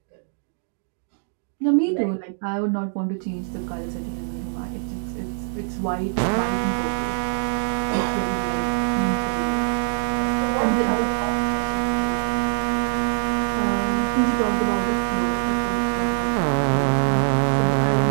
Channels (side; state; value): left; silent; digital silence